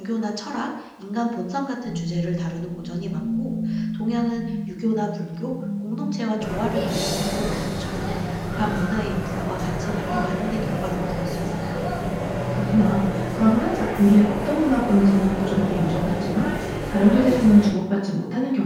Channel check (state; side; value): identical; both; correlation 1.00